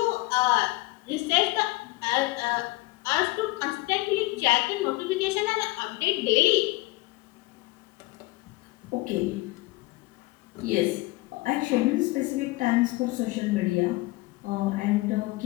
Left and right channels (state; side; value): quieter; right; 21.4 dB